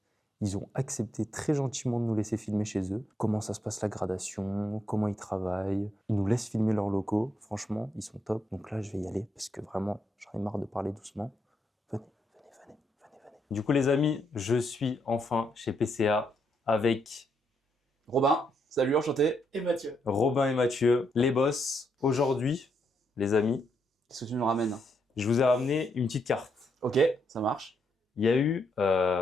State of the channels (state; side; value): normal; both; correlation 0.78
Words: Ils ont accepté très gentiment de nous laisser filmer chez eux. Comment ça se passe la gradation, comment ils travaillent. Ils nous laissent filmer leurs locaux. Franchement, ils sont top. Donc là, je vais y aller parce que vraiment, j'en ai marre de parler doucement. Venez. Du coup, les amis, je suis enfin chez PCA avec Robin, salut, enchanté. Et Mathieu. Robin et Mathieu, les boss. Aujourd'hui, les amis, Qu'est-ce que tu nous ramènes? je vous ai ramené une petite carte. Ok, ça marche. Il y a eu